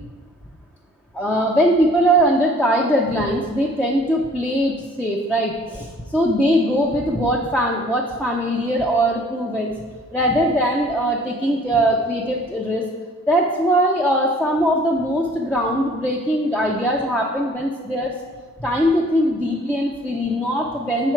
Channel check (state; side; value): normal; both; correlation 0.55